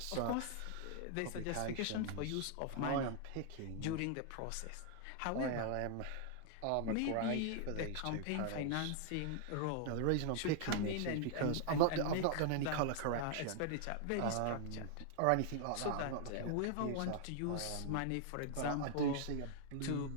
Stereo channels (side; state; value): both; different; correlation 0.00